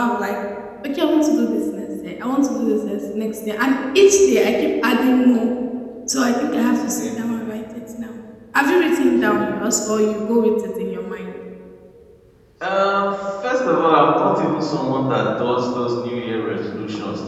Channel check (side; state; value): both; identical; correlation 1.00